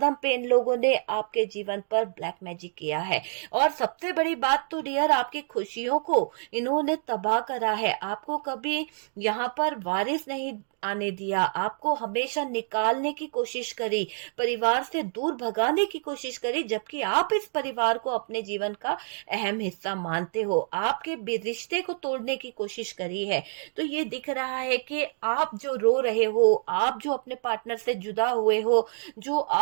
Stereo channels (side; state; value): left; silent; digital silence